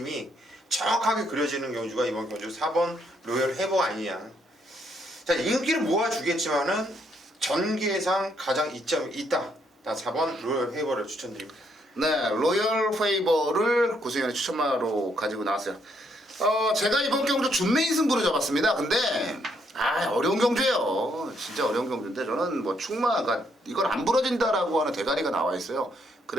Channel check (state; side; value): normal; both; correlation 0.72